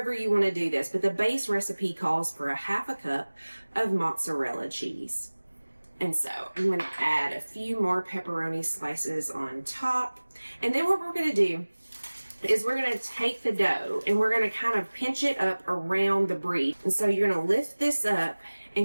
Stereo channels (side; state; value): both; inverted; correlation -1.00